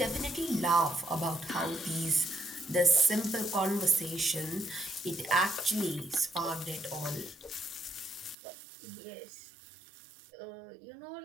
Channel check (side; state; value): left; drops out; at 8.3 s